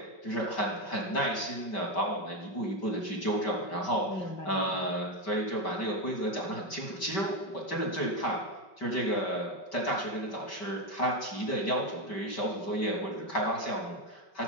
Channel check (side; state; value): right; late; 5.2 ms